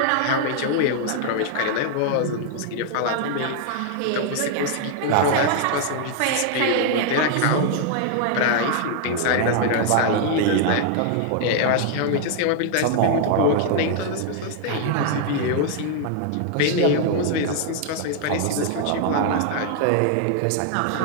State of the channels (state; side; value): different; both; correlation 0.00